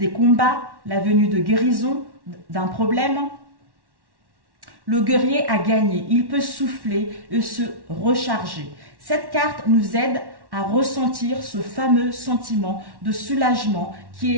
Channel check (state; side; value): late; left; 1.1 ms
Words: combats, la venue de guérison d'un problème. Le guerrier a gagné, il peut souffler et se recharger. Cette carte nous aide à ressentir ce fameux sentiment de soulagement qui